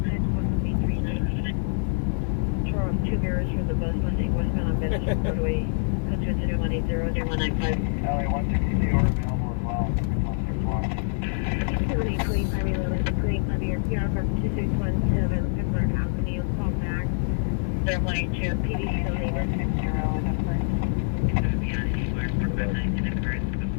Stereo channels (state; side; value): silent; right; digital silence